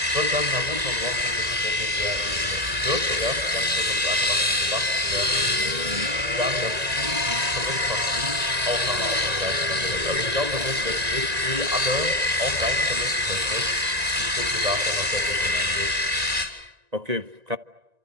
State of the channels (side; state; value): left; late; 1.9 ms